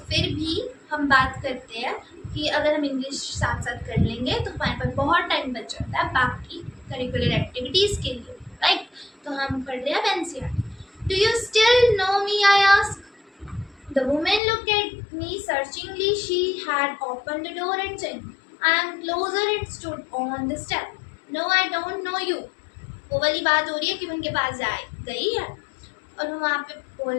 फिर भी हम बात करते हैं कि अगर हम इंग्लिश साथ साथ कर लेंगे तो हमारे पास बहुत टाइम बच जाता है बाकी करिकुलर एक्टिविटीज़ के लिए, राइट। तो हम पढ़ रहे हैं अब NCERT. Do you still know me, I ask. The woman looked at me searchingly. She had opened the door and said, I am closer and stood on the step. No, I don't know you. वो वाली बात हो रही है कि उनके पास गई है और वो वहाँ पे बोल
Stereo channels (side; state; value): right; drops out; at 14.4 s